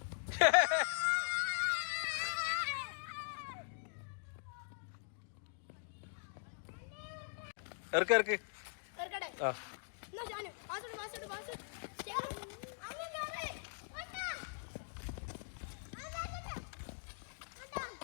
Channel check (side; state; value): right; silent; digital silence